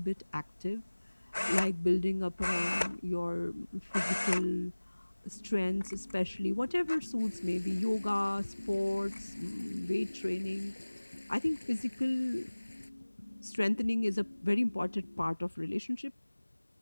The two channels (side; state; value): both; inverted; correlation -1.00